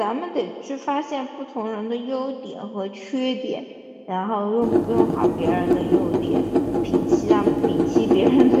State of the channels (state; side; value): identical; both; correlation 1.00